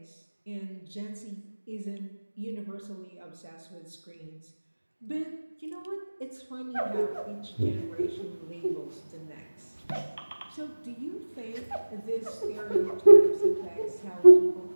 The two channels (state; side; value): inverted; both; correlation -1.00